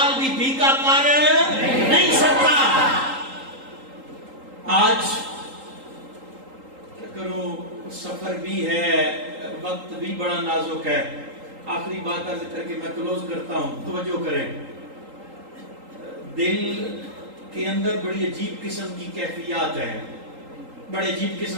بھی بھیگا کر نہیں سکتا۔ آج کیا کروں، سفر بھی ہے، وقت بھی بڑا نازک ہے، آخری بات عرض کر کے میں کلوز کرتا ہوں، توجہ کریں، دل کے اندر بڑی عجیب قسم کی کیفیات ہیں، بڑے عجیب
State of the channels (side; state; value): left; late; 3.8 ms